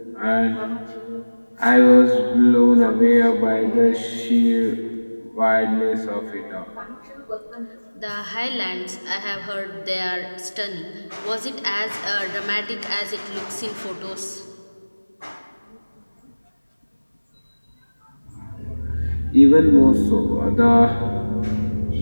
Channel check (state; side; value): inverted; both; correlation -1.00